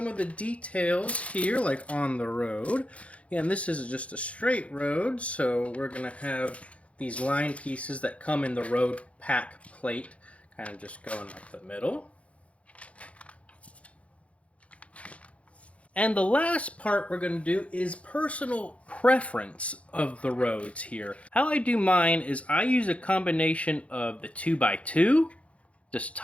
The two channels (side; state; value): right; late; 0.063 ms